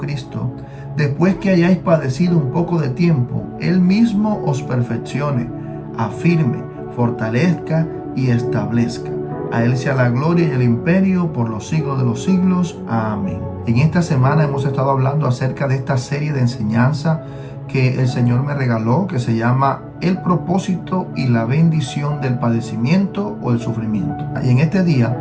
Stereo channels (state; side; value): identical; both; correlation 1.00